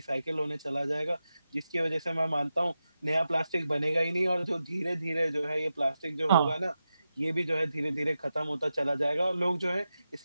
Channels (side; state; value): both; inverted; correlation -0.90